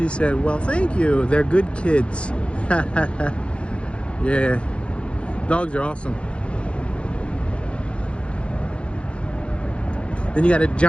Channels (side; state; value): right; late; 0.059 ms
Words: said, well, thank you. They're good kids. Yeah, dogs are awesome. Then you got a